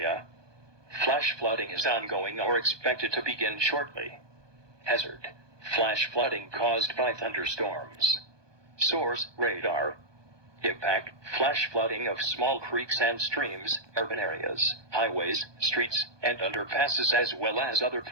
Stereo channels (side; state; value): left; late; 1.2 ms